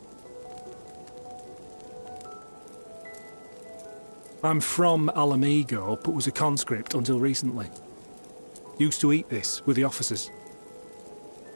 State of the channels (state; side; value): inverted; both; correlation -1.00